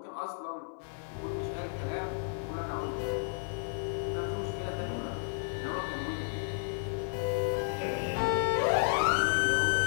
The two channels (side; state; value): right; silent; 56 dB below the other